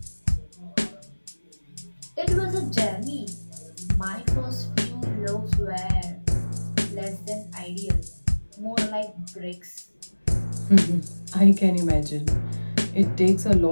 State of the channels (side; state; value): both; inverted; correlation -1.00